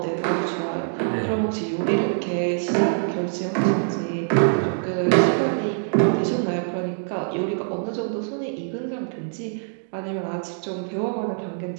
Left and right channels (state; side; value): silent; left; digital silence